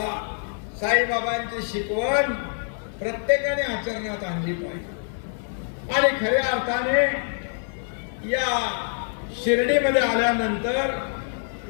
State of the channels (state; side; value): silent; right; 62 dB below the other